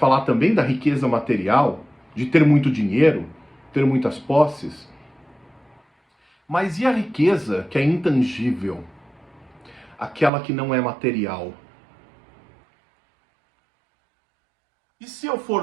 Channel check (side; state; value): left; drops out; at 10.3 s